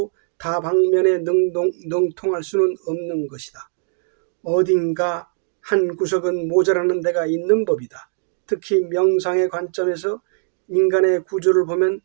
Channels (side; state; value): left; silent; digital silence